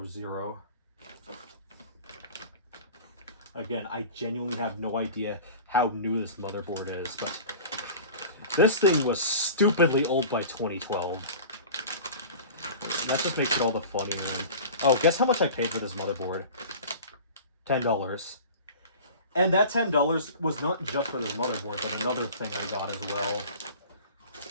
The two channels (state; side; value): inverted; both; correlation -0.38